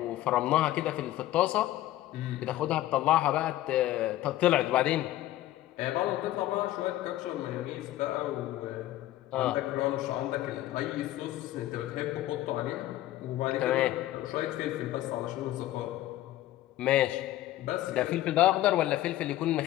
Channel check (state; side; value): quieter; right; 14.7 dB